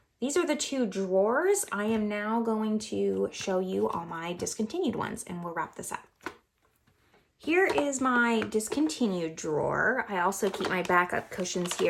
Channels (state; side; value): identical; both; correlation 1.00